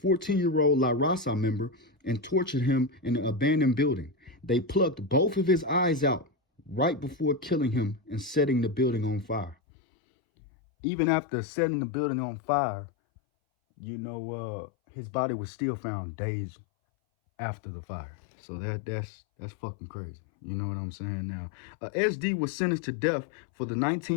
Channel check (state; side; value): drops out; right; at 9.6 s